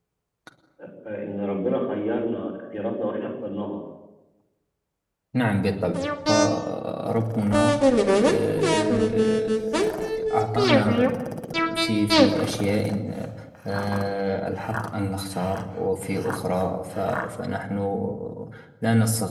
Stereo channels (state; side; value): identical; both; correlation 1.00